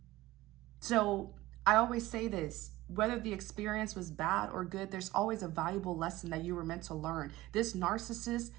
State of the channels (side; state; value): left; quieter; 17.7 dB